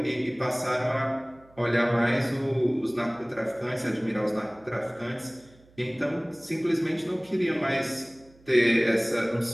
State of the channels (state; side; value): noise; right; hum, 28 dB below the sound